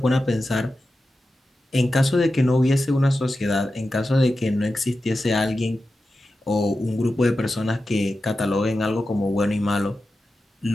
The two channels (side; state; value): both; normal; correlation 0.92